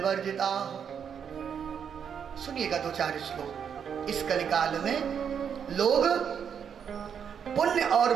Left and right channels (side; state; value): left; quieter; 7.6 dB